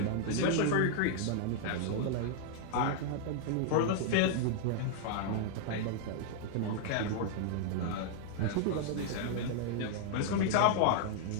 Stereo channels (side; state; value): both; different; correlation -0.01